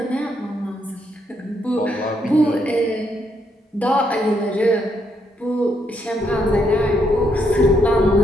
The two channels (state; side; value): normal; both; correlation 0.75